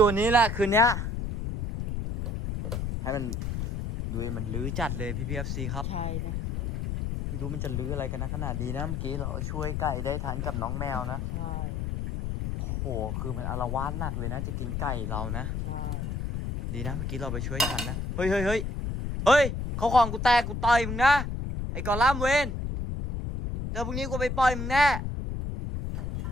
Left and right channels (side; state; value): left; noise; rumble, 3 dB below the sound